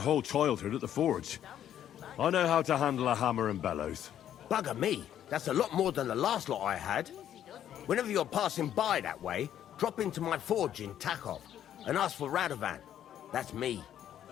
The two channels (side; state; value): right; quieter; 10.6 dB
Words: childhood at the forge. I know how to handle a hammer and bellows. Bugger me, that's a lot more than the last lot I had. Whenever you're passing by that way, drop into my forge in Takov and ask for Radovan. That's me.